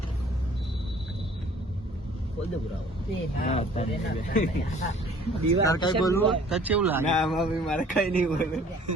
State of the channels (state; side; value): normal; both; correlation 0.53